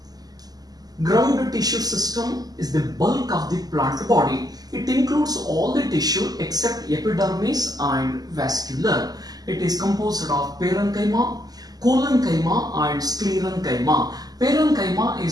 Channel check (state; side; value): late; left; 0.18 ms